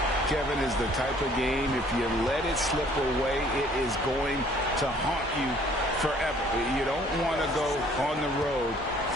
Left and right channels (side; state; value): both; normal; correlation 0.58